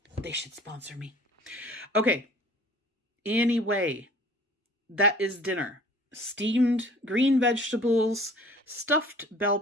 sponsor me. Okay, anyway, that is dinner. Steamed green vegetables, stuffed bell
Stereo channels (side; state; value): both; normal; correlation 0.49